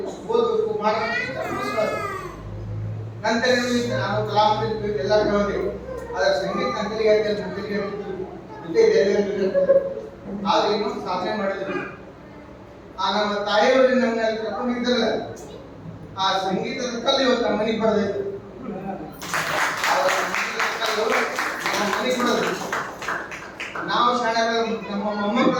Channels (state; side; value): identical; both; correlation 1.00